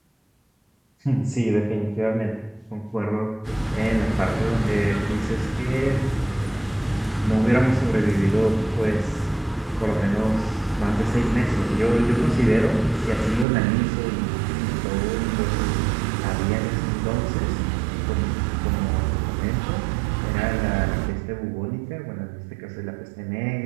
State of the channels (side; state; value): left; drops out; at 13.5 s